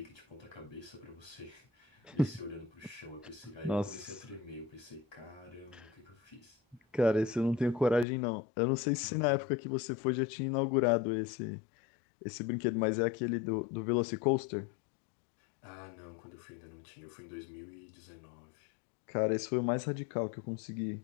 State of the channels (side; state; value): right; drops out; at 8.1 s